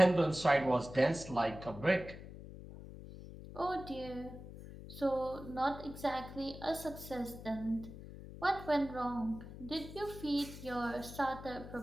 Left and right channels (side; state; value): left; noise; hum, 13 dB below the sound